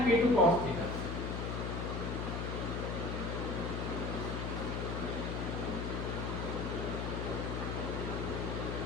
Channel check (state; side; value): noise; left; hum, 2 dB below the sound